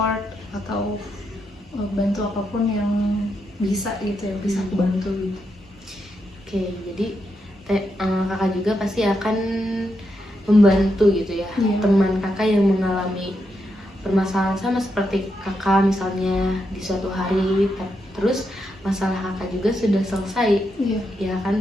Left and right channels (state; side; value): normal; both; correlation 0.83